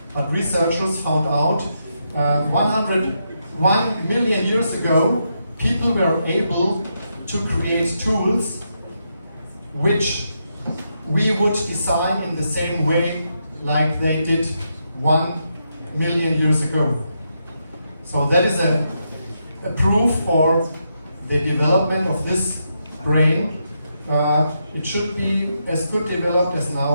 but researchers found out 101 million years ago, people were able to create tools which we would design in the same way like they did 1 million years ago. So that is a proof for the development of this brain. It should be as good developed as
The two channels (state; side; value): inverted; both; correlation -0.82